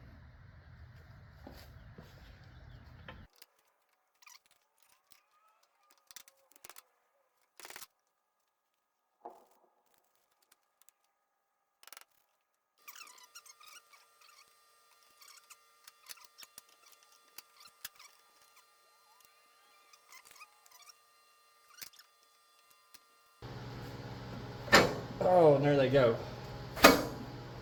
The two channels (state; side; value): identical; both; correlation 1.00